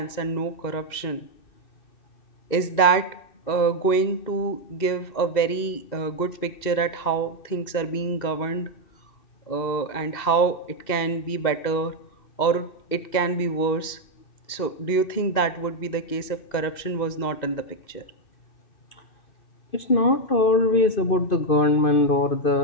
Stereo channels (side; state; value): right; late; 2.7 ms